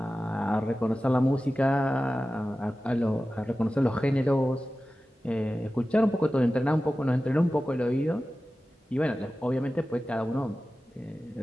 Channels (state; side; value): normal; both; correlation 0.95